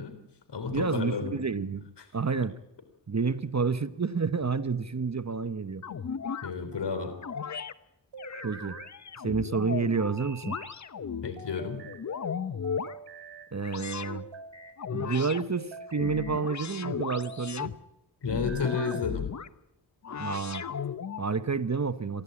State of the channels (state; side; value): normal; both; correlation 0.14